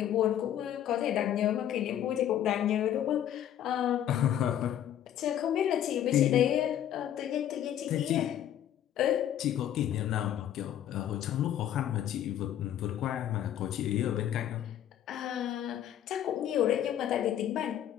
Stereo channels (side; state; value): right; quieter; 10.9 dB